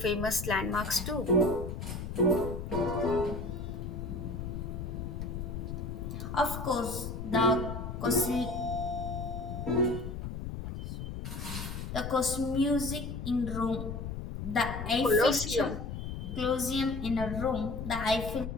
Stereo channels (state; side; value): noise; left; rumble, 6 dB below the sound